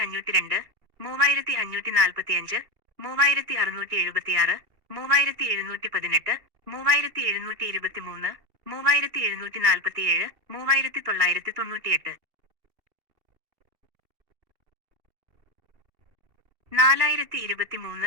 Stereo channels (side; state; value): left; late; 2.7 ms